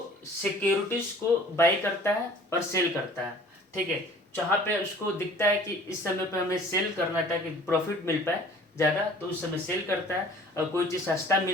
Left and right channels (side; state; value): both; normal; correlation 0.49